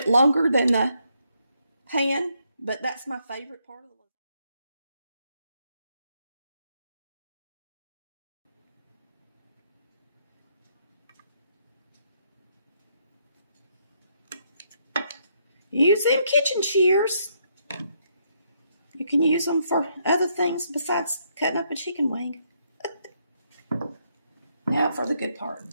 longer than the pan, but that's my favorite part of the lasagna. Use them kitchen shears. You can use them for other things besides cutting up a chicken wing. Now for the good part,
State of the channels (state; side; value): inverted; both; correlation -0.74